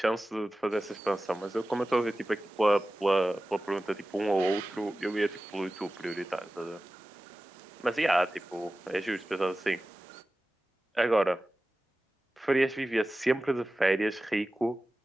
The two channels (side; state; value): both; normal; correlation 0.96